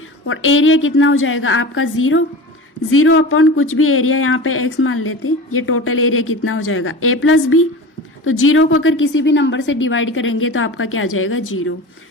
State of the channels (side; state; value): both; normal; correlation 0.32